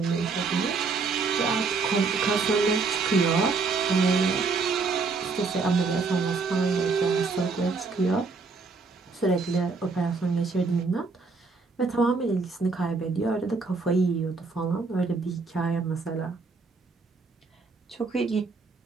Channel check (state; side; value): quieter; left; 4.4 dB